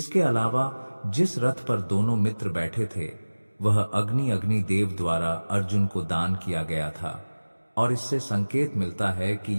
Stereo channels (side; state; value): both; inverted; correlation -1.00